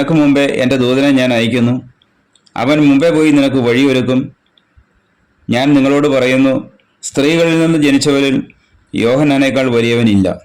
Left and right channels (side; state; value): both; identical; correlation 1.00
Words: മുമ്പേ എൻ്റെ ദൂതനെ ഞാൻ അയക്കുന്നു. അവൻ മുമ്പേ പോയി നിനക്ക് വഴിയൊരുക്കും. ഞാൻ നിങ്ങളോട് പറയുന്നു, സ്ത്രീകളിൽ നിന്ന് ജനിച്ചവരിൽ യോഹന്നാനേക്കാൾ വലിയവനില്ല.